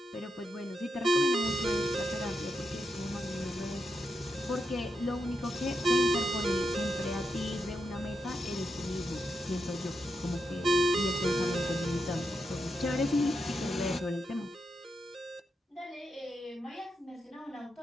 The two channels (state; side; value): normal; both; correlation 0.85